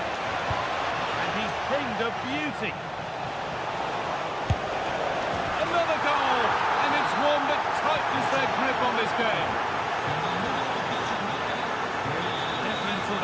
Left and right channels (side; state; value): both; identical; correlation 1.00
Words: And he's pinged a beauty. Another goal! And it's one that tightens their grip on this game.